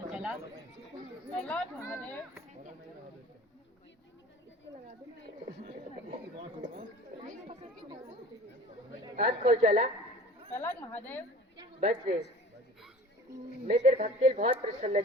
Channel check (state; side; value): normal; both; correlation 0.43